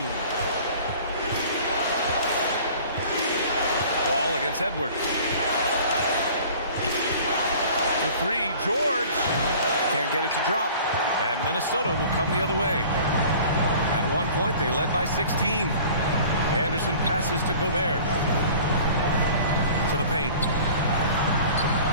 Wall against Edwards. The 3, George. Can't get it to drop. And Minnesota will come the other way. At one point, they led by 16. Anderson passes to Gobert. To the paint.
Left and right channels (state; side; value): inverted; both; correlation -0.46